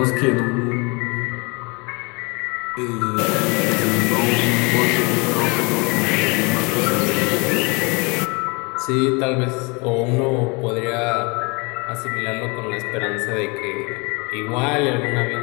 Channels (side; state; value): right; quieter; 29.4 dB